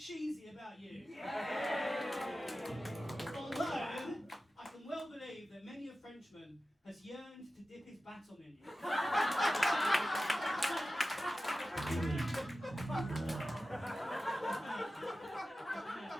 about you. Although, I can well believe that many a Frenchman has yearned to dip his baton in you.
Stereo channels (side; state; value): both; normal; correlation 0.94